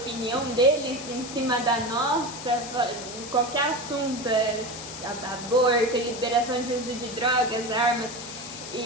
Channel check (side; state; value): left; noise; hiss, 11 dB below the sound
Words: deles em cima da nossa, qualquer assunto, aborto, liberação de uso de drogas, armas,